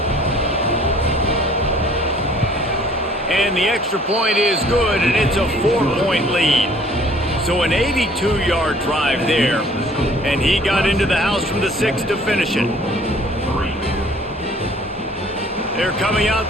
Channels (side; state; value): both; normal; correlation 0.55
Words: And the extra point is good, and it's a 4-point lead. So an 82-yard drive there, and he got into the house from the 6 to finish it. They're coming